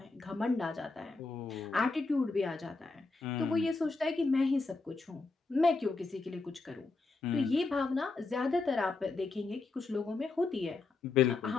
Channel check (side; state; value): right; quieter; 3.8 dB